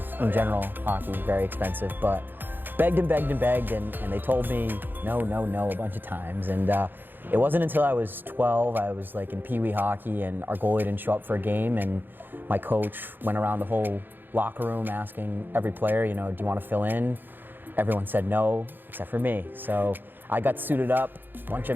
In general, hockey, very expensive, but begged and begged and begged, and they told me no, no, no a bunch of times. And it wasn't until I was 12, I was like in Pee Wee hockey, and our goalie didn't show up for a game, and my coach went around the whole locker room asking every player, you know, do you want to fill in? Everyone said no, except for me. So I got suited up, a bunch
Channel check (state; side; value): late; left; 0.094 ms